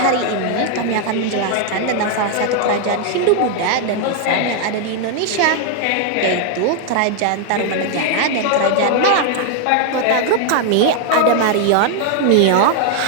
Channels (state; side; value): different; both; correlation 0.00